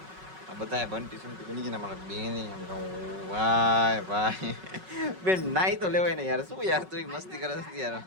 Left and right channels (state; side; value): late; left; 5.4 ms